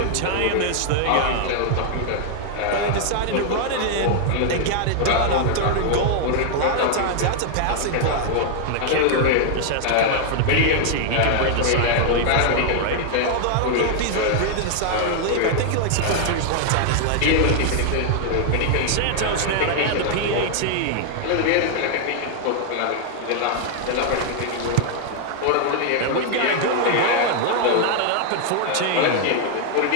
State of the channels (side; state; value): both; different; correlation 0.00